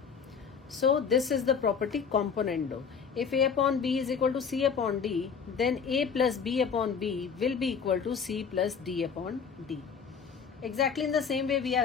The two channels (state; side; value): quieter; right; 6.4 dB